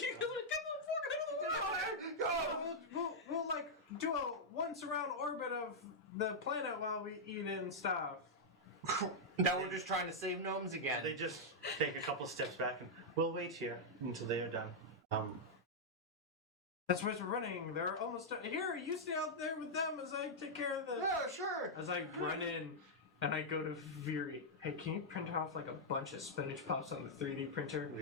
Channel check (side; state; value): both; normal; correlation -0.06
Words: We'll like do a once around orbit of the planet while we eat and stuff. Now we're just trying to save gnomes again. they just take a couple steps back and we'll wait here until they are done. That's why we're running. They're almost done. Here, you stay out there with them as I take care of the. Yeah, sure. As I run in and I go to Viri. Hey, can you print off like a bunch of spinach puffs on the 3D printer? We